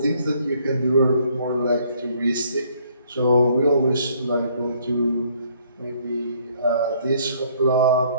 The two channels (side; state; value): both; inverted; correlation -0.64